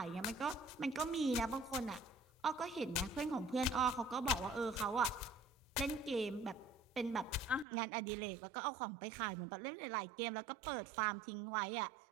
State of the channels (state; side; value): drops out; left; at 7.7 s